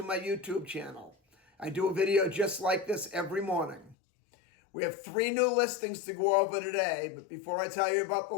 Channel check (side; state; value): right; drops out; at 4.0 s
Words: my YouTube channel. I do a video just like this every morning. We have 3 new listings to go over today, but before I tell you about the